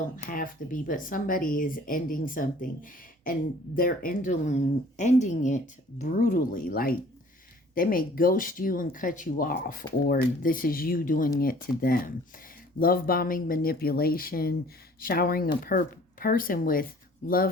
have to be, but somebody is ending something, and they're ending it brutally. Like, they may ghost you and cut you off, or this is you doing it to them. Love bombing, manipulation, showering a person with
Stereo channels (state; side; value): normal; both; correlation 0.52